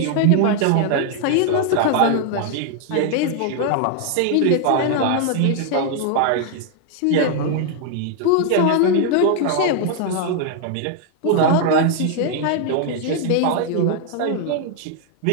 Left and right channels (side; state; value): both; different; correlation 0.00